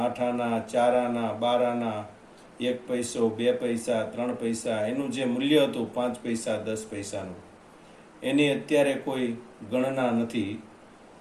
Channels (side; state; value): both; identical; correlation 1.00